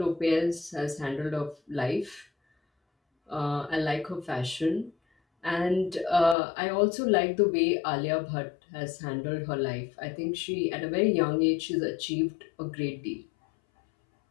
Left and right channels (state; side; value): drops out; right; at 6.4 s